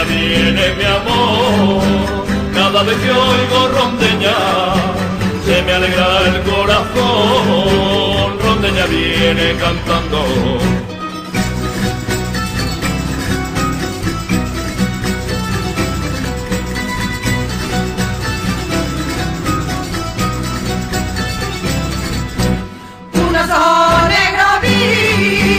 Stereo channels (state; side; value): identical; both; correlation 1.00